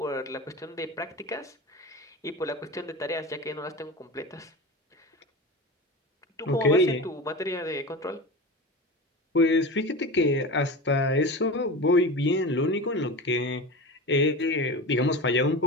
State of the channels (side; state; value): both; normal; correlation 0.29